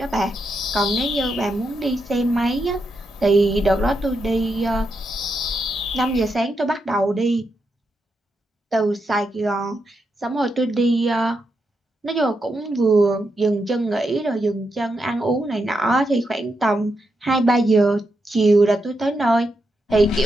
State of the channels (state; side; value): normal; both; correlation 0.84